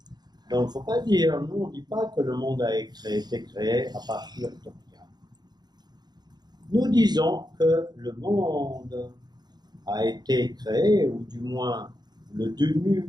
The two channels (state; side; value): late; left; 0.20 ms